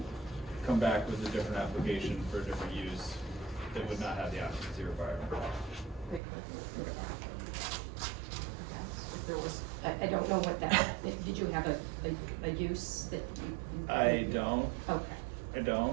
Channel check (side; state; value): left; drops out; at 6.2 s